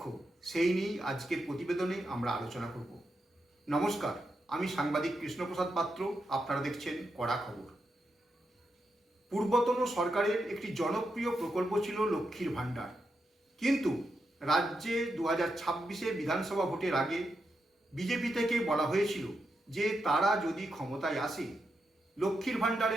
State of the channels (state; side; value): normal; both; correlation 0.85